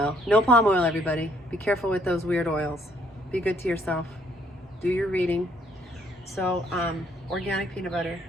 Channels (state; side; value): normal; both; correlation 0.67